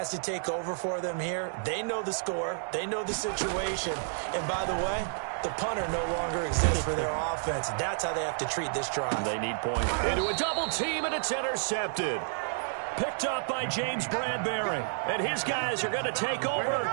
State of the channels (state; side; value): silent; left; digital silence